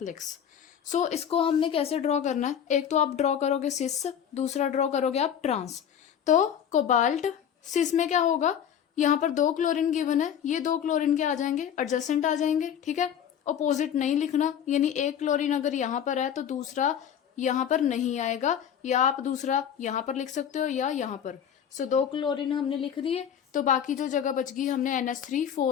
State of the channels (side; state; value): right; quieter; 8.9 dB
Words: So इसको हमने कैसे ड्रॉ करना है, एक तो आप ड्रॉ करोगे सिस, दूसरा ड्रॉ करोगे आप ट्रांस। तो कोबाल्ट सिस में क्या होगा, यहाँ पर 2 क्लोरीन गिवन है, ये 2 क्लोरीन के आ जाएंगे, एडजेसेंट आ जाएंगे, ठीक है। अपोजिट नहीं लिखना, यानी एक क्लोरीन अगर यहाँ पर है तो दूसरा यहाँ पर नहीं आएगा, या आप दूसरा यहाँ पर लिख सकते हो या यहाँ पर। सो 2 क्लोरीन हमने लिख दिए, तो बाकी जो जगह बच गई हमने NH3